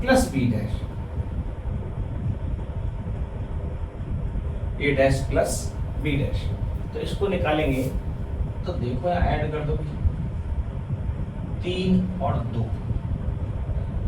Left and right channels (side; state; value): both; identical; correlation 1.00